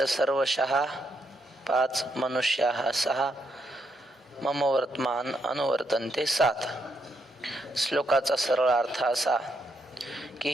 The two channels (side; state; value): both; normal; correlation 0.78